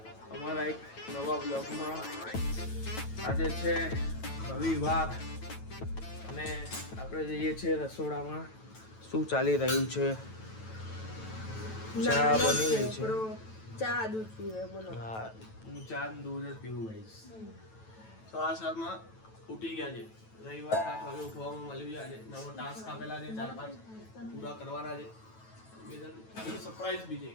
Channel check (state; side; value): late; right; 9.1 ms